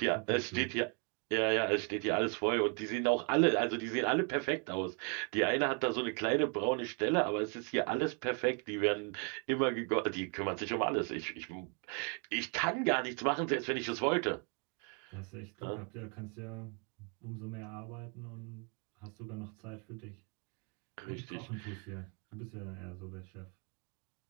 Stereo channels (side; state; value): left; quieter; 36.1 dB